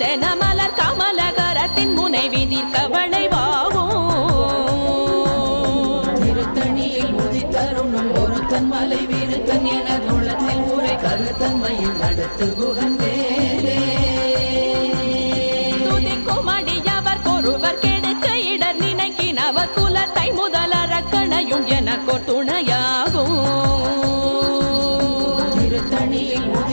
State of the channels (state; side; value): inverted; both; correlation -1.00